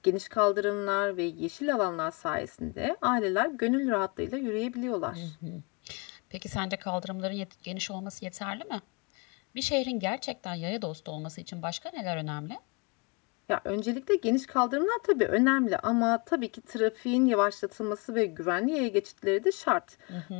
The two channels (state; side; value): quieter; right; 30.6 dB